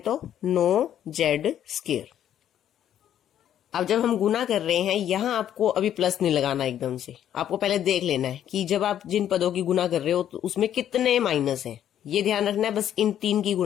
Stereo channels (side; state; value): right; quieter; 10.6 dB